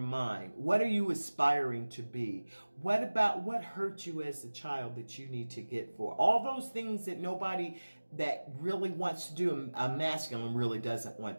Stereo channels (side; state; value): both; inverted; correlation -1.00